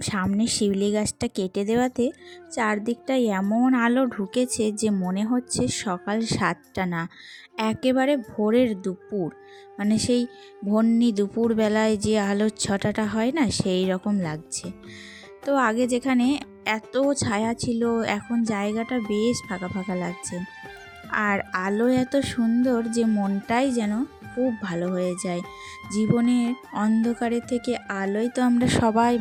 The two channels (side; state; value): both; identical; correlation 1.00